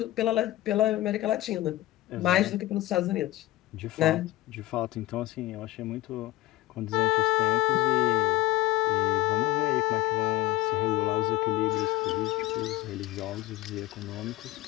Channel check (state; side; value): quieter; right; 16.9 dB